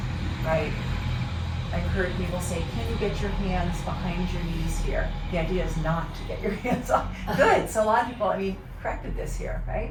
right? I've heard people say, can you get your hands behind your knees here? The idea is not to get your hands off. Good, so a lot of people, corrected this here,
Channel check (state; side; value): identical; both; correlation 1.00